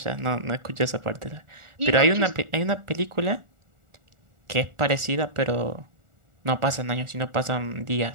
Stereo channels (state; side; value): late; left; 1.4 ms